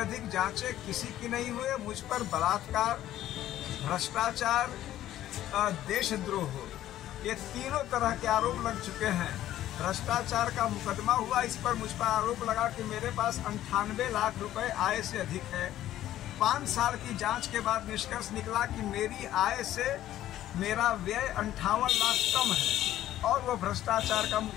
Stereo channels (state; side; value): quieter; right; 13.1 dB